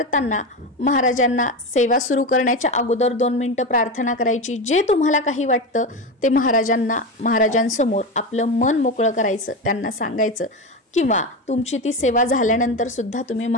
महाराजांना सेवा सुरू करण्याच्या अगोदर 2 मिनिटं प्रार्थना करायची। जे तुम्हाला काही वाटतं ते महाराजांसमोर आपलं मन मोकळं करायचं, त्यांना सांगायचं किंवा तुमची ती सेवा झाल्यानंतर सुद्धा तुम्ही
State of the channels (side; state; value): both; normal; correlation 0.18